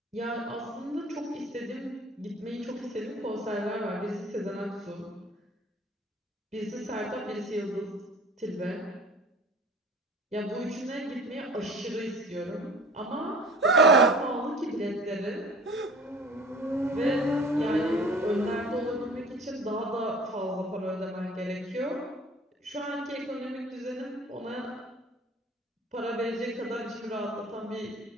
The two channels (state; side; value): normal; both; correlation 0.45